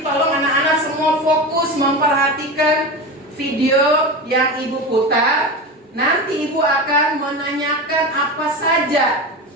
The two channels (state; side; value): normal; both; correlation 0.24